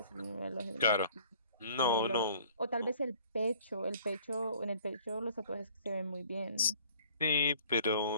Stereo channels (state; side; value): inverted; both; correlation -0.55